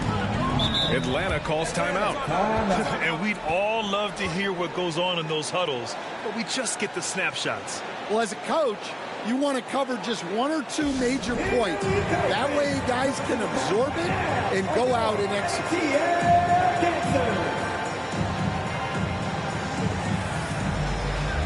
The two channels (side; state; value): both; identical; correlation 1.00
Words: Atlanta calls timeout. And we'd all love to hear what goes on in those huddles, but we just get the snapshots. Well, as a coach, you want to cover just 1 or 2 major points. That way guys can absorb it and go out and execute.